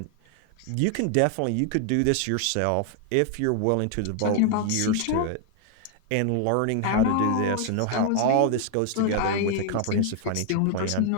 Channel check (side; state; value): both; different; correlation 0.00